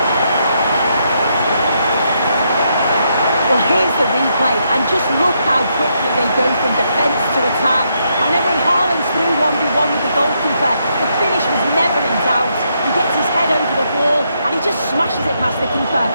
Well, here's the replay, and just look how quickly they go from defence to attack. And then when Haaland's through 1v1 with the goalkeeper, the finish was never in doubt. He gets his head over the ball, and he just smashes it past the keeper.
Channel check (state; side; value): inverted; both; correlation -0.77